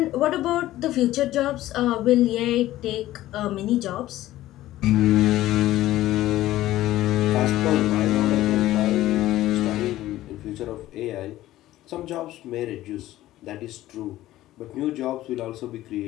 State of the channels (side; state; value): right; quieter; 15.1 dB